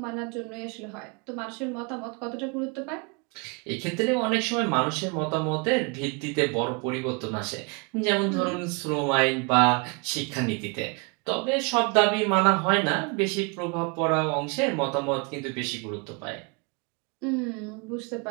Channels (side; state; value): left; quieter; 31.5 dB